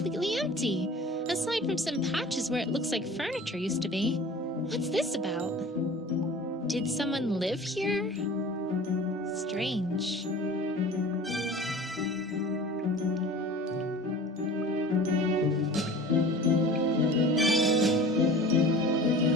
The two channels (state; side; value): normal; both; correlation 0.41